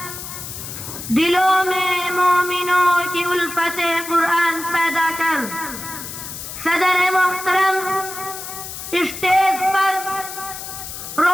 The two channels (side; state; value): left; noise; hiss, 9 dB below the sound